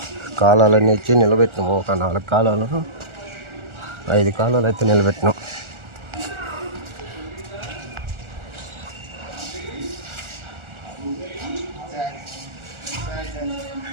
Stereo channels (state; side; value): late; left; 1.4 ms